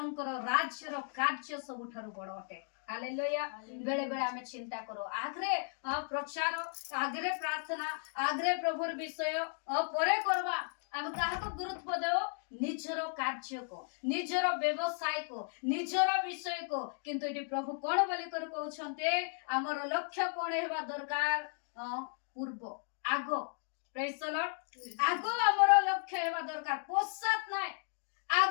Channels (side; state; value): right; silent; 54 dB below the other